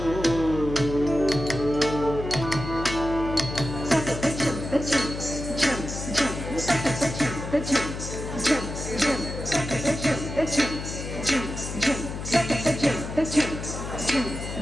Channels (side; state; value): left; noise; hum, 7 dB below the sound